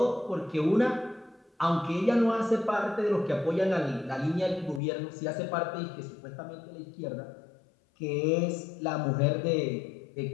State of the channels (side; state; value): right; drops out; at 4.8 s